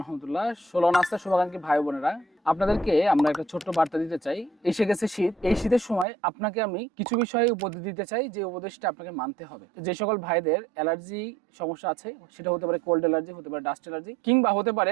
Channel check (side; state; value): left; drops out; at 6.1 s